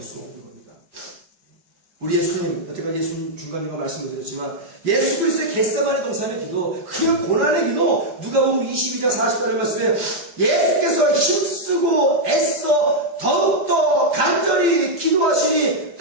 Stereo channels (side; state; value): left; late; 5.0 ms